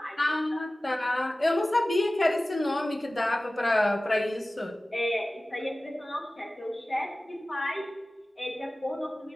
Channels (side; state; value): both; normal; correlation 0.97